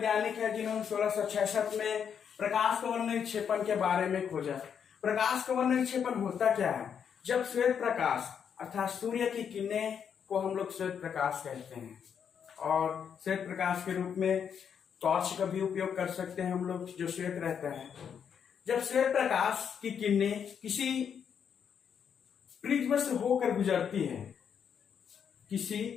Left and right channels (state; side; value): quieter; right; 7.6 dB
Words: है जिन्होंने 1666 में प्रकाश कवर्ण निक्षेपण के बारे में खोजा। प्रकाश कवर्ण निक्षेपण होता क्या है? जब श्वेत प्रकाश अर्थात सूर्य की किरणें को हम लोग श्वेत प्रकाश कहते हैं और श्वेत प्रकाश के रूप में टॉर्च का भी उपयोग कर सकते हैं हम लोग, जो श्वेत रहता है। जब श्वेत प्रकाश की किरणें किसी प्रिज्म से होकर गुजरती है,